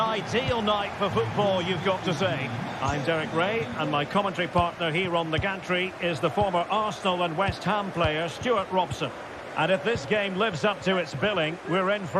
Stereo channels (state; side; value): identical; both; correlation 1.00